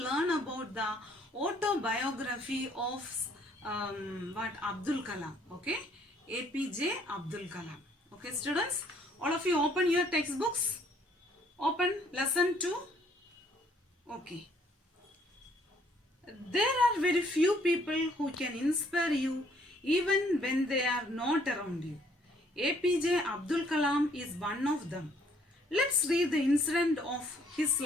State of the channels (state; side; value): normal; both; correlation 0.64